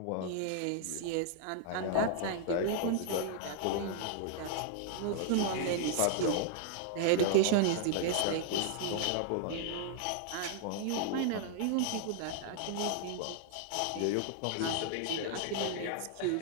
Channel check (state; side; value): different; both; correlation 0.00